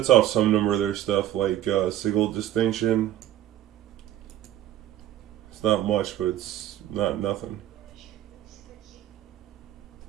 off some number of their stuff, like Sigil Distinction. It's not much, but it's not nothing.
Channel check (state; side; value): quieter; left; 12.7 dB